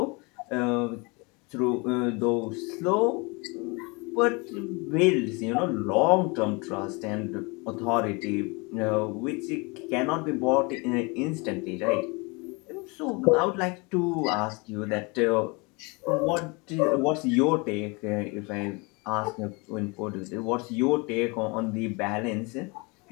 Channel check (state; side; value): quieter; right; 28.5 dB